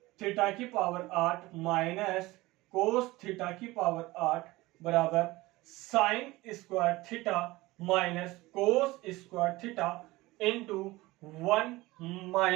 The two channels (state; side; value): quieter; left; 19.9 dB